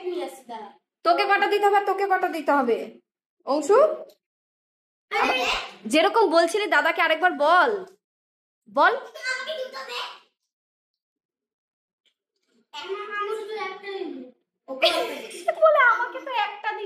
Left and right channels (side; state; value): both; identical; correlation 1.00